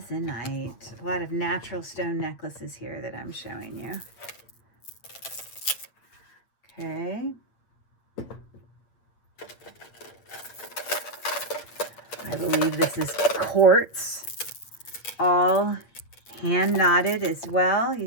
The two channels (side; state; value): right; late; 8.6 ms